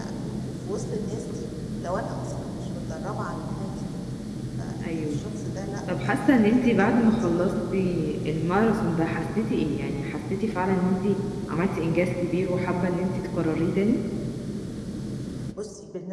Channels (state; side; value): identical; both; correlation 1.00